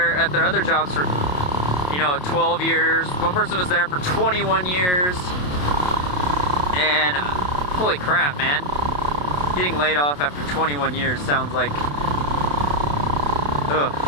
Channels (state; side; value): late; right; 28 ms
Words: at their other jobs for, 12 years. One person was there for 21 years. And holy crap, man. Getting laid off after 21 years sounds like, ugh.